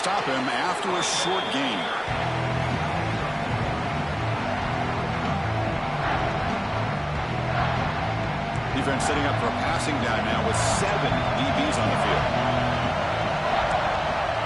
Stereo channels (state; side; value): identical; both; correlation 1.00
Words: him after a short gain. Defense setting up for a passing down now with 7 DBs on the field.